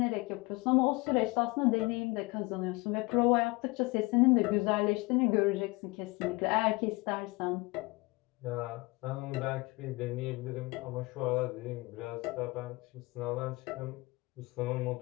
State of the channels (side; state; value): right; quieter; 24.0 dB